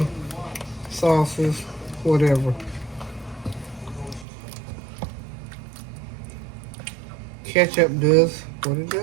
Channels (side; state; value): left; drops out; at 4.2 s